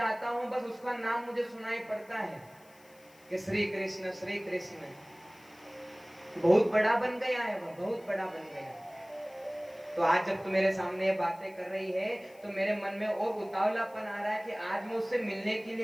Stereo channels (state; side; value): noise; left; hiss, 27 dB below the sound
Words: हूं बस उसका नाम मुझे सुनाई पड़ता है कि श्री कृष्ण श्री कृष्ण। बहुत बड़ा बन गया है वह, बहुत बड़ा बन गया है। तो आज जब तू मेरे सामने ये बातें कर रही है तो मेरे मन में और उतावलापन आ रहा है कि आज मैं उससे मिलने के